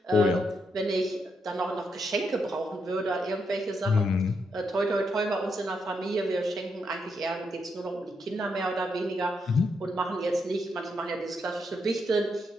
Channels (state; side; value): normal; both; correlation 0.80